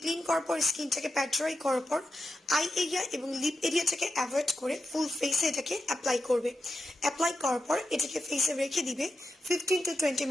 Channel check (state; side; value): normal; both; correlation 0.88